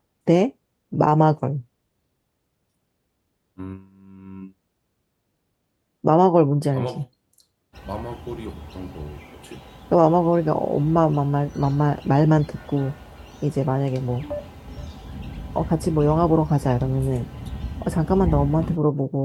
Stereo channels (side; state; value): both; identical; correlation 1.00